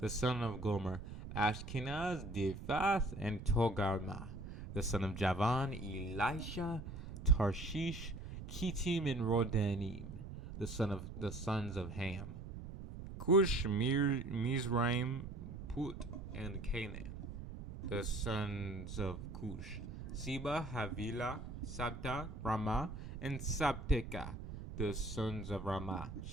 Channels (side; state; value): right; noise; rumble, 9 dB below the sound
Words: son of Gomer: Ashkenaz, Diphath, and Togarmah. The son of Javan: Elisha, Tarshish, Kittim, and Rodanim. The sons of Ham: Cush, Mizraim, Put, and Canaan. The sons of Cush: Seba, Havilah, Sabta, Ramah, and Sabteka. The sons of Ramah: